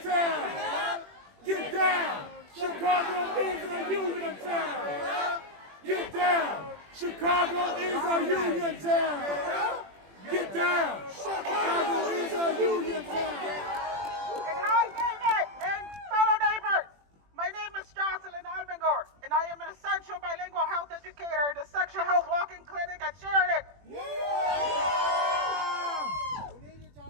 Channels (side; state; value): left; late; 21 ms